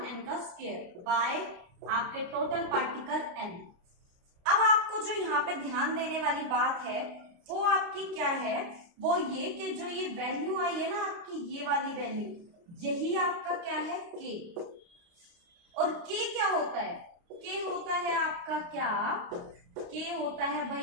का स्क्वायर बाय आपके टोटल पार्टिकल n। अब आपको जो यहाँ पे ध्यान देने वाली बात है वो आपकी क्या है, वो ये कि जो ये वैल्यू आई है ना आपकी, ये वाली वैल्यू, यही आपका क्या है k। और k क्या होता है, k होता है आपका क्या, k होता है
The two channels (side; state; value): left; late; 29 ms